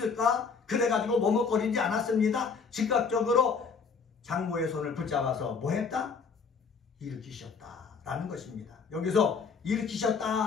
그래가지고 머뭇거리지 않았습니다. 즉각적으로 장모의 손을 붙잡아서 뭐 했다? 일으키셨다라는 것입니다. 여기서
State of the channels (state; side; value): quieter; right; 5.4 dB